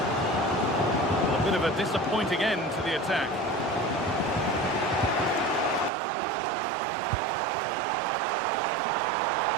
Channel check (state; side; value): drops out; left; at 5.9 s